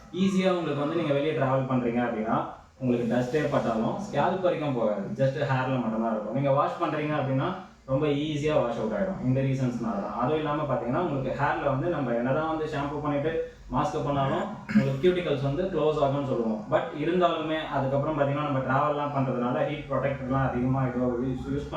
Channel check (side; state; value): both; identical; correlation 1.00